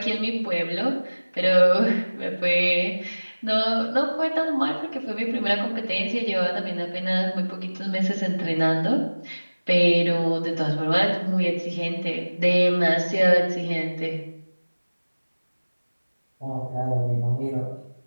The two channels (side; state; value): both; inverted; correlation -1.00